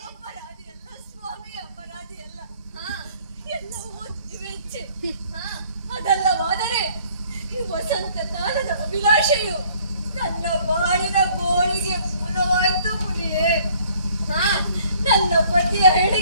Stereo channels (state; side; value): inverted; both; correlation -0.59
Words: ಅಪರಾಧಿಯಲ್ಲ ಸ್ವಾಮಿ ಅಪರಾಧಿಯಲ್ಲ. ಎಲ್ಲವೂ ತಿವೆಚ್ಚೆ. ಅದಲ್ಲವಾದರೆ ಈ ವಸಂತ ಕಾಲದ ಅಭಿಲಾಷೆಯು ನನ್ನ ಬಾಳಿನ ಗೋಳಿಗೆ ಮೂಲವಾಯ್ತು ಮುನಿಯೇ. ನನ್ನ ಪತಿಯ